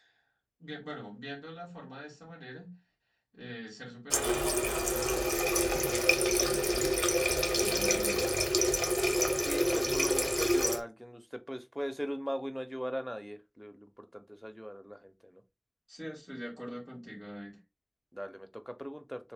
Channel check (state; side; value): identical; both; correlation 1.00